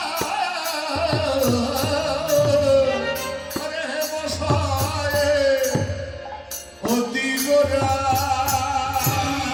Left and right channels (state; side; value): identical; both; correlation 1.00